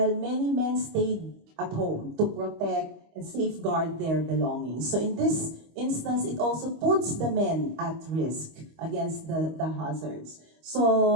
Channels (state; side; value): late; left; 25 ms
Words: many men stayed at home to protect and safeguard their belongings. So in this instance, it also puts the men at risk against the hazards.